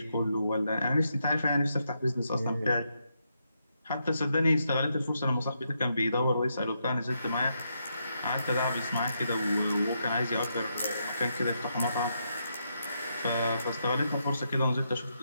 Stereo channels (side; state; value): both; inverted; correlation -0.81